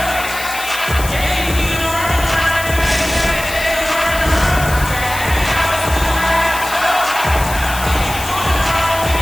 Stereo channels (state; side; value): noise; left; hiss, 10 dB below the sound